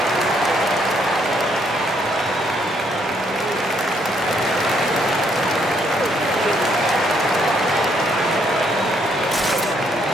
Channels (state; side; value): normal; both; correlation 0.71